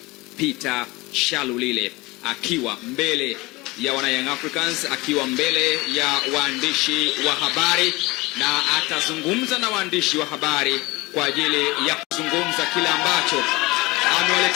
Peter Shalulile akiwa mbele ya wana Young Africans, akiwa mbele ya waandishi wa habari, na atazungumza na waandishi wa habari kwa ajili ya kuzungumza kile ambacho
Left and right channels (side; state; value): right; quieter; 22.3 dB